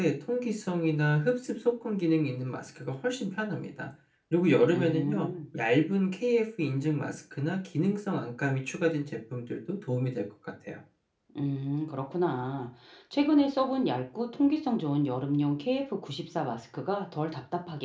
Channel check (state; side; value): identical; both; correlation 1.00